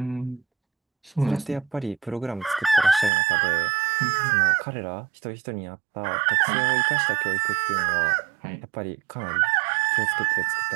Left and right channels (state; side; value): drops out; left; at 3.1 s